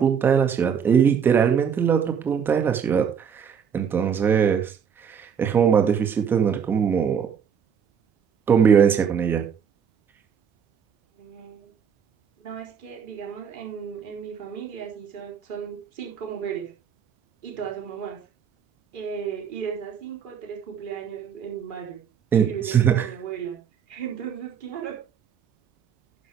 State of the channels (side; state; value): left; quieter; 7.4 dB